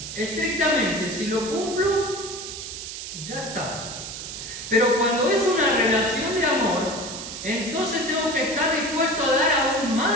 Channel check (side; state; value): right; noise; hiss, 9 dB below the sound